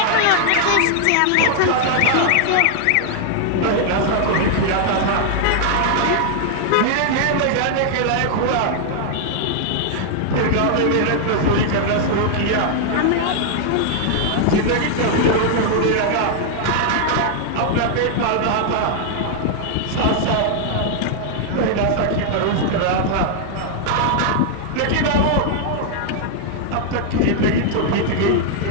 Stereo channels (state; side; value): different; both; correlation 0.00